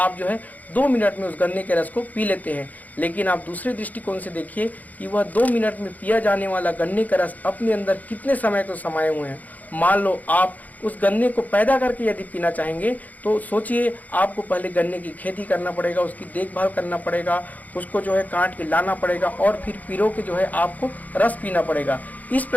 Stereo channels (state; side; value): late; right; 0.078 ms